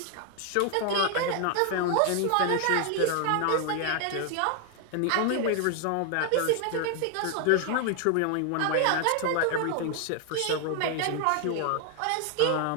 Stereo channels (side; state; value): both; different; correlation 0.00